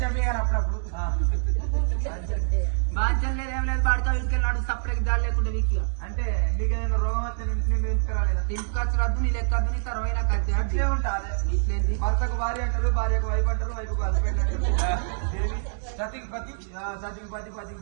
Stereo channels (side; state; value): left; silent; digital silence